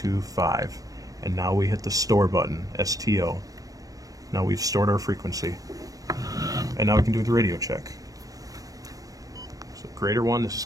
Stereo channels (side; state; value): left; late; 0.17 ms